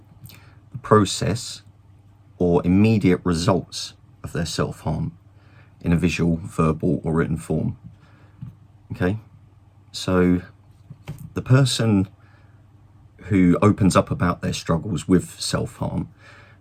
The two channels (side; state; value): both; identical; correlation 1.00